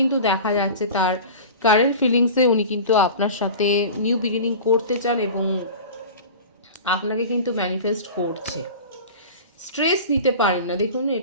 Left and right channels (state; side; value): inverted; both; correlation -0.35